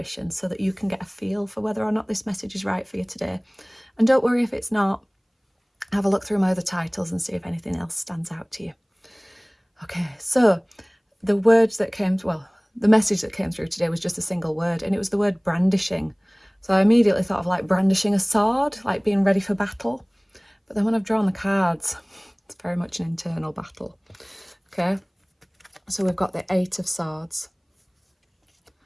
so that you can get a feel for whether or not this message is right for you today. And don't worry if it's not. Have a look through my other titles and see if anything else stands out to you. Okay, so the message that came through today was just a single word, and it was the word brandishing. So I immediately thought of like brandishing a sword, like being ready for battle. But then when I've drawn the cards, it's very much an internal battle. Okay, so we've got the Eight of Swords.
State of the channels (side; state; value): both; identical; correlation 1.00